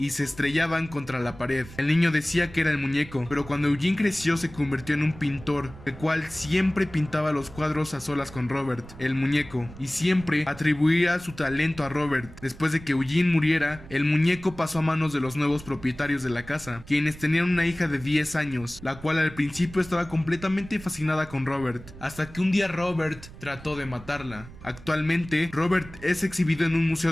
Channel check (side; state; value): right; noise; rumble, 17 dB below the sound